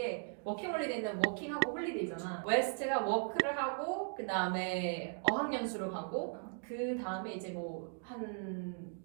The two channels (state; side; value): silent; left; 53 dB below the other